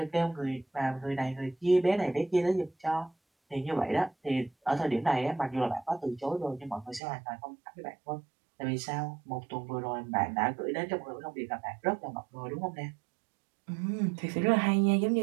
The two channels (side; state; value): left; drops out; at 7.0 s